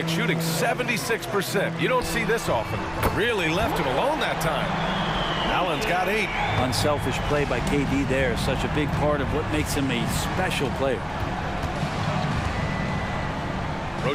shooting 76%. You don't see this often. Really left him alone that time. Allen's got 8. Unselfish play by KD there. Such a big part of what makes him a special player.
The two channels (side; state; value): both; identical; correlation 1.00